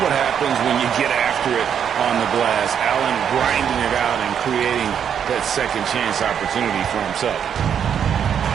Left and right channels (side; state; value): left; quieter; 8.2 dB